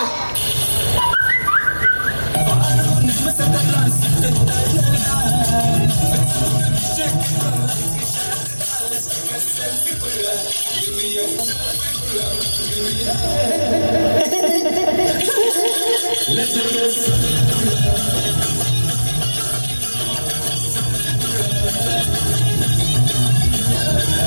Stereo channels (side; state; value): both; inverted; correlation -1.00